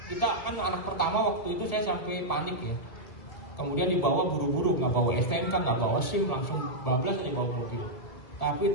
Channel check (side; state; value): right; late; 1.8 ms